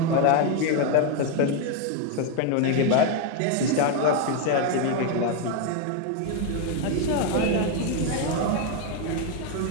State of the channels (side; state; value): both; different; correlation 0.01